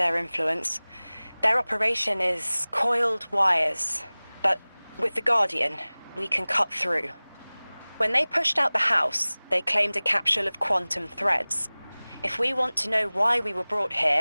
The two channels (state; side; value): inverted; both; correlation -1.00